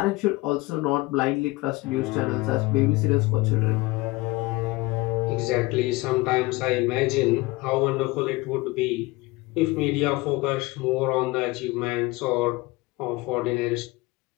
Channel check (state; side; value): quieter; right; 22.1 dB